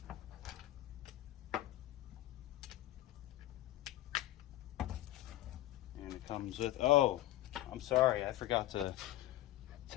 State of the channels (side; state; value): right; quieter; 15.0 dB